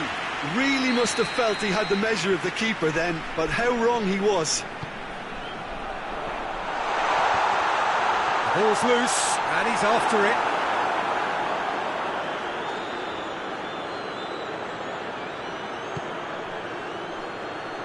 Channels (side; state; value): both; identical; correlation 1.00